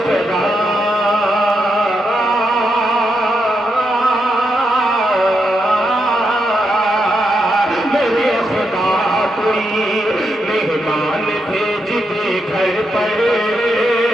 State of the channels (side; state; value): both; normal; correlation 0.83